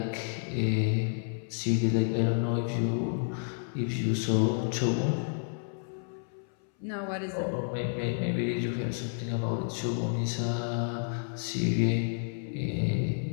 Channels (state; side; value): silent; right; 57 dB below the other